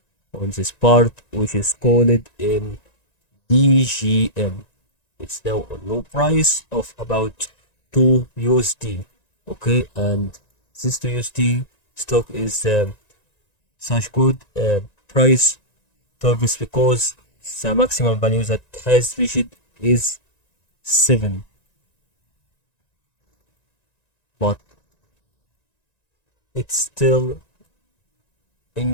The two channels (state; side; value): late; right; 1.9 ms